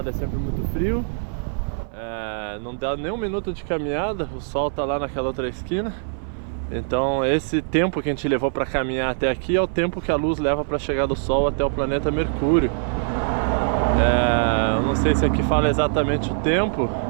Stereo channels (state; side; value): silent; left; 58 dB below the other